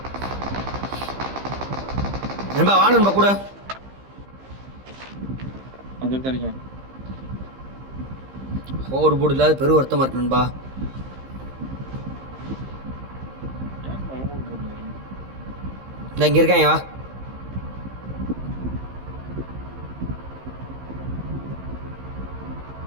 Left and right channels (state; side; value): late; left; 15 ms